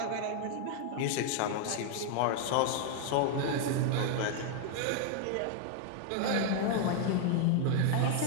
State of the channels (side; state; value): both; different; correlation 0.00